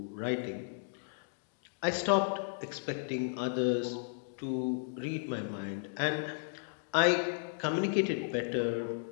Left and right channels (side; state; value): right; silent; digital silence